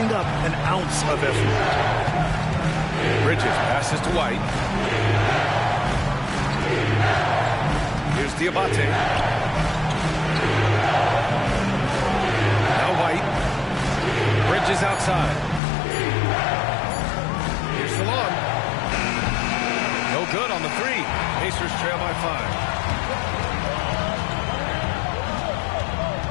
up an ounce of effort. Bridges passes to White. Here's Diabate. Now White. Bridges outside. Here's Salon. No good on the 3. Pacers trail by 5.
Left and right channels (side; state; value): right; drops out; at 15.6 s